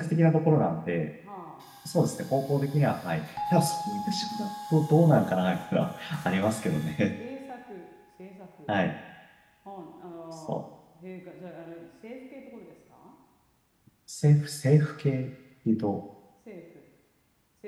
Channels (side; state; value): both; identical; correlation 1.00